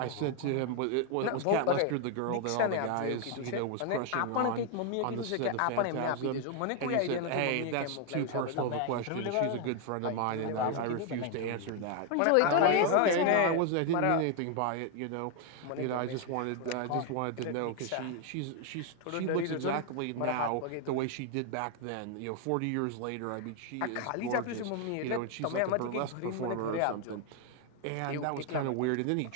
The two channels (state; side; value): different; both; correlation 0.00